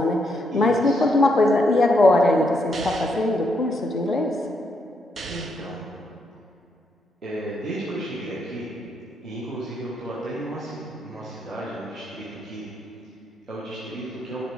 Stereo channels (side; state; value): both; normal; correlation 0.77